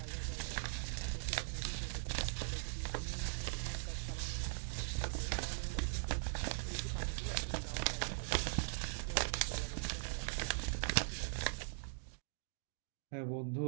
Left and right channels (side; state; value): left; silent; digital silence